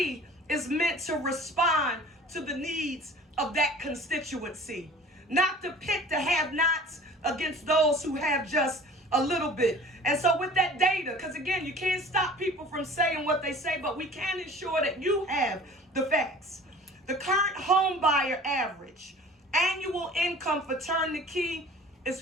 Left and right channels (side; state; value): both; normal; correlation 0.45